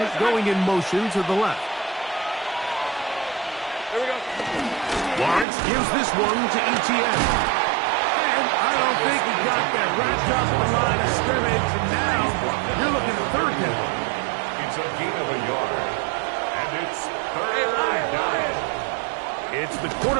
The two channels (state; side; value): drops out; left; at 5.5 s